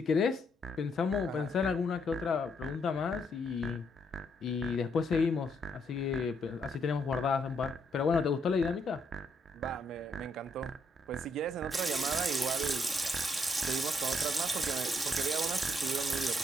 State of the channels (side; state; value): both; normal; correlation 0.74